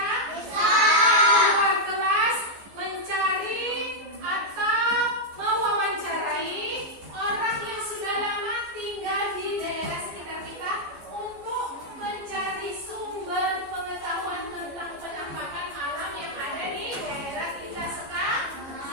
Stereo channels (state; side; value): late; left; 14 ms